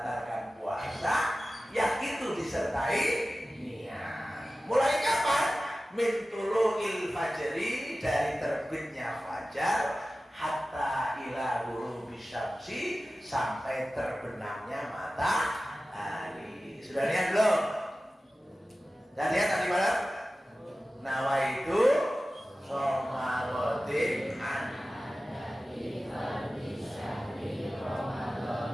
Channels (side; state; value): both; normal; correlation 0.95